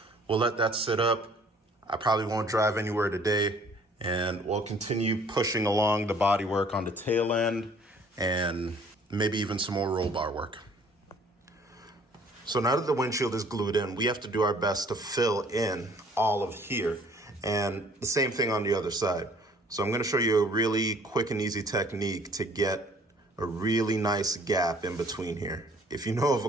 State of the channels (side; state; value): both; normal; correlation 0.57